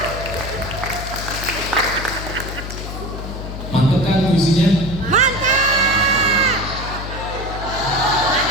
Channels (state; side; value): noise; left; hum, 8 dB below the sound